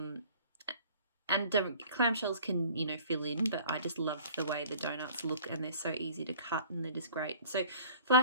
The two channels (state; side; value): inverted; both; correlation -0.49